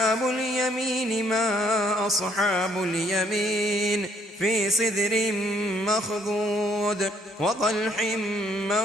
اليمين ما أصحاب اليمين في سدر مخضود وطلح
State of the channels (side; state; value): both; normal; correlation 0.67